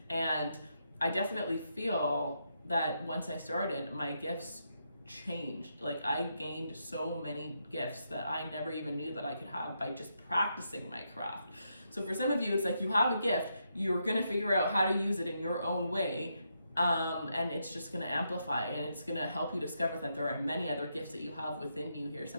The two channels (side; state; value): both; inverted; correlation -0.81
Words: And I definitely feel that once I started, my gifts changed. Like, I gained so many gifts that I never even knew that I could have by just practicing my craft. So for some of you, it's like you have a gift, you're gonna figure out how to use it in your own way, and it's just gonna amplify, and it's gonna help you discover that there are many other gifts that you have within you here.